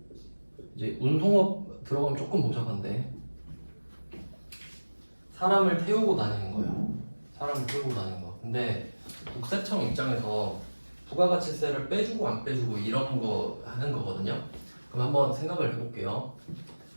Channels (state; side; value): inverted; both; correlation -1.00